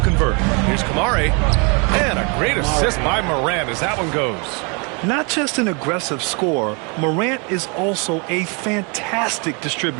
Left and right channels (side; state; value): left; quieter; 33.0 dB